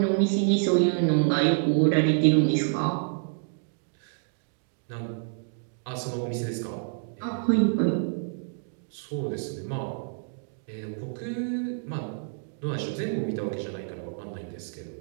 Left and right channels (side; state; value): left; silent; digital silence